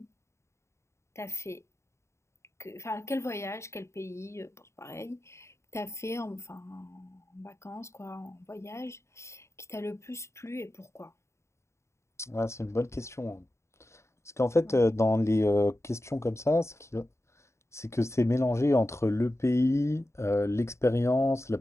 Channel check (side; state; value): right; late; 0.14 ms